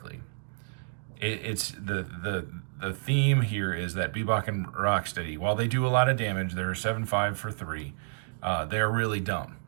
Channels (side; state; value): left; silent; digital silence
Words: it's the theme here is that Bebop and Rocksteady, while they do a lot of damage, they're 7/5 for 3. They're really dumb.